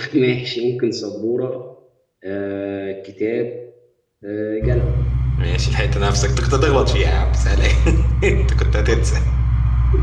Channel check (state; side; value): identical; both; correlation 1.00